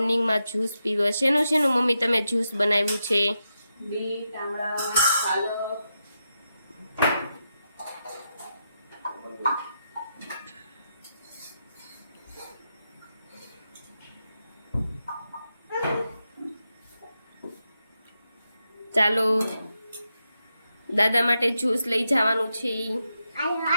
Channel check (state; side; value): inverted; both; correlation -0.86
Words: જ્યુસ પીવે। શેનું શેનું મમ્મી તમે જ્યુસ બનાવ્યું છે? બીટ, આમળા, પાલક। ચાલો દાદા માટે જ્યુસ લઈ જવાનું છે।